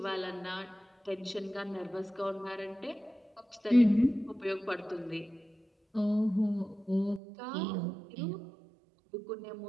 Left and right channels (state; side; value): drops out; left; at 7.2 s